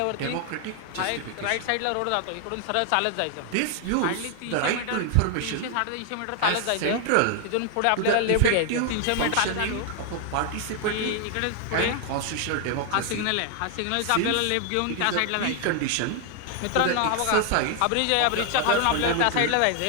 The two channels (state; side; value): different; both; correlation 0.00